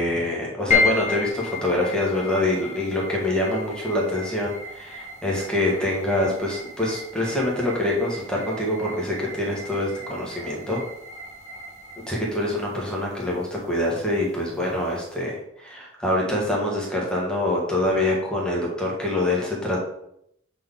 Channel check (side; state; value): both; normal; correlation 0.29